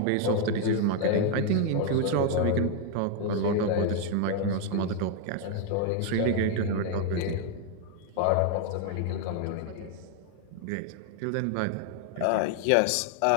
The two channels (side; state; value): both; different; correlation 0.01